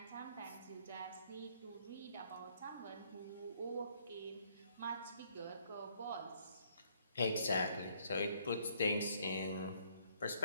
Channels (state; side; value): inverted; both; correlation -0.67